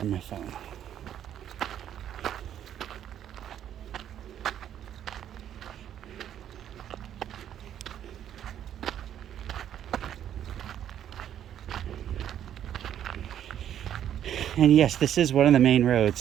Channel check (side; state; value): left; quieter; 10.3 dB